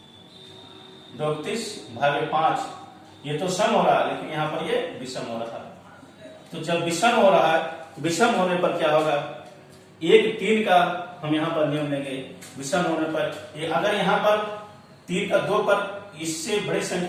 भागे 5, ये तो सम हो रहा है, लेकिन यहाँ पर ये विषम हो रहा है। तो जब विषम हो रहा है, विषम होने पर क्या होगा, 1 3 का हम यहाँ पर नियम लेंगे। विषम होने पर ये अगर यहाँ पर 3 का 2 पर इससे बड़ी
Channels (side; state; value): both; identical; correlation 1.00